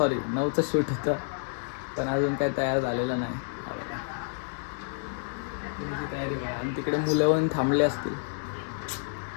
शूट होतं, पण अजून काही तयार झालेलं नाही. तुमची तयारी करा. आणि तिकडे मुलं येऊन थांबले असतील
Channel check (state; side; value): silent; right; digital silence